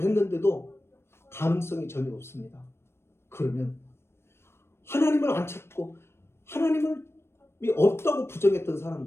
했는데도 가능성이 전혀 없습니다. 그러면 하나님을 안 찾고 하나님이 없다고 부정했던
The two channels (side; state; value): right; late; 0.12 ms